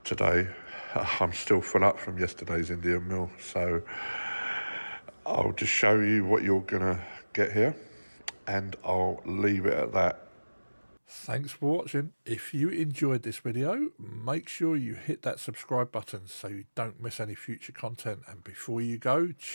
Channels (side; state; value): both; inverted; correlation -1.00